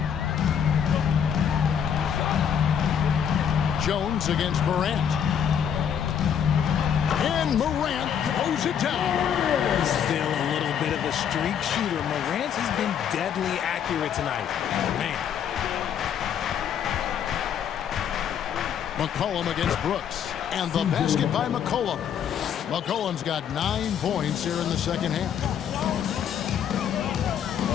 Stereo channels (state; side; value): quieter; right; 8.5 dB